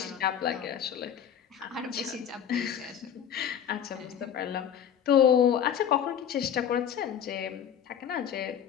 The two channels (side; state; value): right; quieter; 9.0 dB